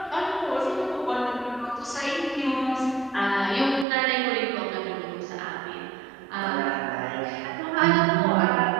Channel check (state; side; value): drops out; left; at 3.9 s